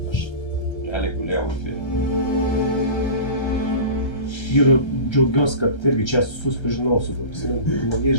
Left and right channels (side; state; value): right; late; 1.3 ms